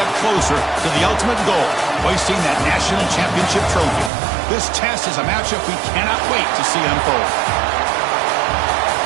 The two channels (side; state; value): left; drops out; at 4.1 s